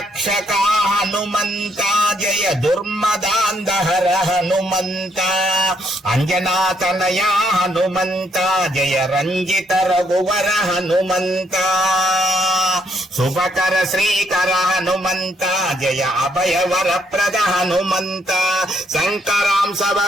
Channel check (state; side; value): normal; both; correlation 0.73